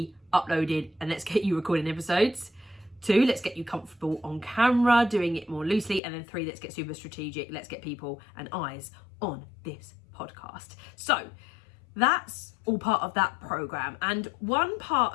uploaded, and let's get you recording episodes. 2, let's get you comfortable on camera, doing it more loosely. And then 3, let's get super strategic. Let's get people and eyes on this podcast. So that's all part of that program. And one part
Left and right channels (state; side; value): drops out; right; at 6.0 s